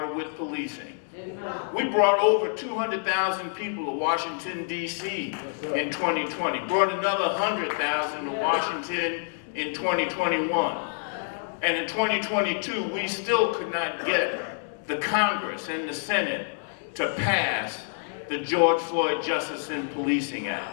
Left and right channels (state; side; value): silent; right; digital silence